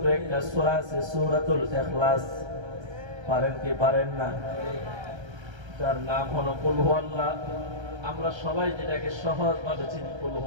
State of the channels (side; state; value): left; late; 1.3 ms